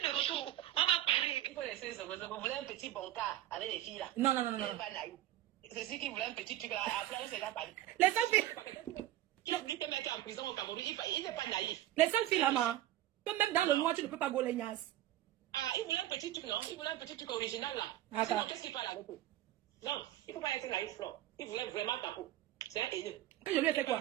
de retour. On va parler. Il faut laisser ça. Vous voulez un petit bon cas avec les filles là? Non. C'est ce qui voulait un petit truc là. Après, c'est là, les seules filles. Il a dit que mec en prison au Cameroun. Il n'est pas naïf. Les seules filles là, que même dans le noir, tu ne peux pas gauler Nias. Ah, il voulait un petit truc, non? Il voulait un petit truc original là. Ah, sinon, qu'est-ce qu'il parle avec eux? Non, il ne faut pas être naïf, Flore. Il voulait vraiment ta peau. C'est un haineux. Que je lui ai fait quoi?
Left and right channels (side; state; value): left; quieter; 14.0 dB